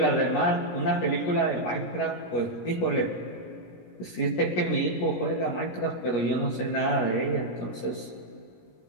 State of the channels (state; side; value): late; right; 17 ms